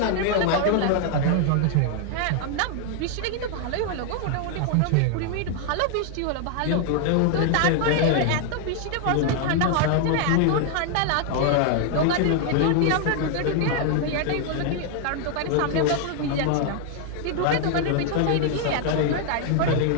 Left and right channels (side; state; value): both; different; correlation 0.00